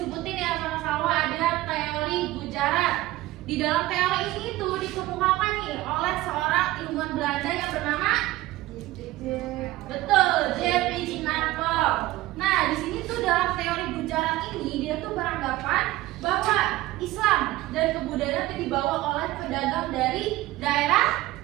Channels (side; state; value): left; quieter; 17.3 dB